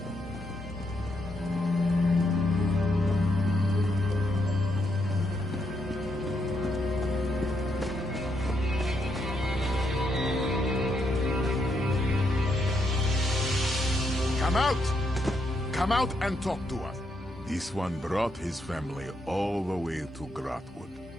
Come out! Come out and talk to us. This one brought his family all the way to Grotwood,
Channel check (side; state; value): both; normal; correlation 0.78